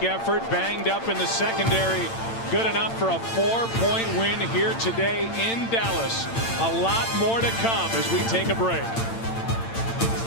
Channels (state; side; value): late; right; 8.8 ms